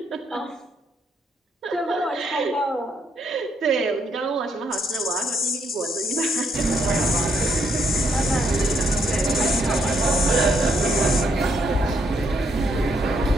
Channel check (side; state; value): both; normal; correlation 0.74